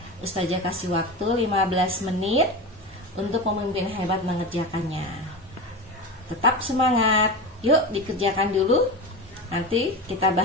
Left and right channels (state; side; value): normal; both; correlation 0.24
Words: Ustazah kasih waktu 15 menit untuk pemimpin hebat mengerjakannya. Tetap semangat. Yuk dikerjakan dulu. Nanti kita